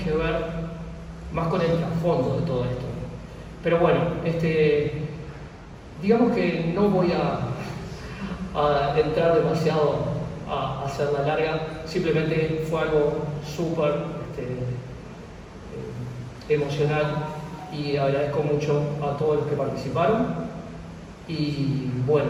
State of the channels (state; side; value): identical; both; correlation 1.00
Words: ver más con el trasfondo de todo esto. Pero bueno, digamos que no voy a entrar demasiado a hacerla larga, simplemente fue algo súper emocional, y agradezco mucho a todos los que participaron. Y bueno,